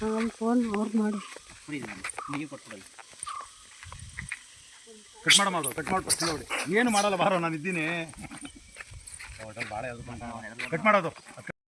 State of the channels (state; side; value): identical; both; correlation 1.00